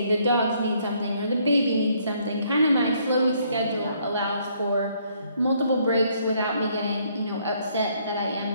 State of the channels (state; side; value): inverted; both; correlation -0.67